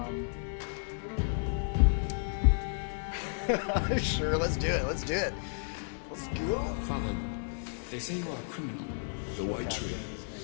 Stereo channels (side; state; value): right; silent; digital silence